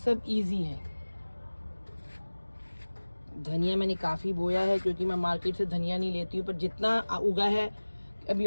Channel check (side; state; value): both; inverted; correlation -1.00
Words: इजी है। धनिया मैंने काफ़ी बोया है, क्योंकि मैं मार्केट से धनिया नहीं लेती हूँ, पर जितना उगा है, अभी